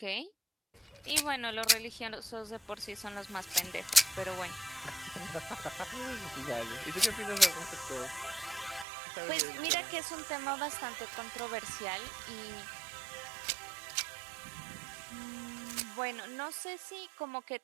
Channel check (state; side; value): drops out; left; at 8.8 s